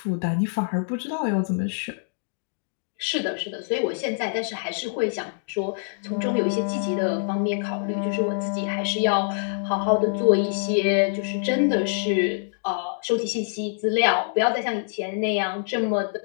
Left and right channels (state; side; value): silent; right; digital silence